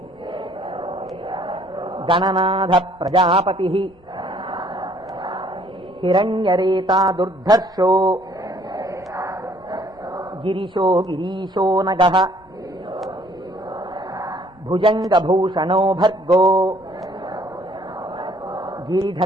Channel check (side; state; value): both; normal; correlation 0.61